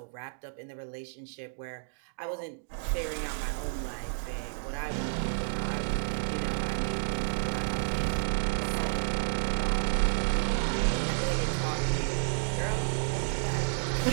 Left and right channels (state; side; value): silent; left; digital silence